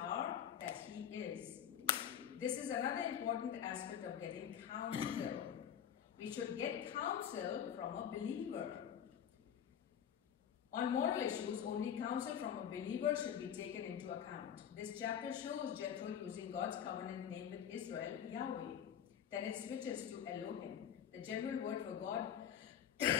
that he is. This is another important aspect of getting counsel. We should get counsel from a believer. On moral issues, only counsel from a believer should be taken into account. This chapter shows Jethro using God's covenant name with Israel, Yahweh. Then it switches to Elohim, the general word for God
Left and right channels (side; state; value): right; quieter; 9.1 dB